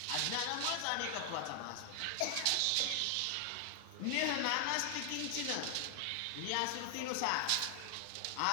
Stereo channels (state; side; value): different; both; correlation 0.00